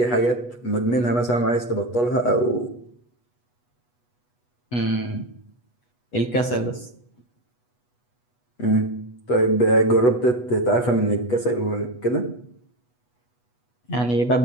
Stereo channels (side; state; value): right; late; 8.2 ms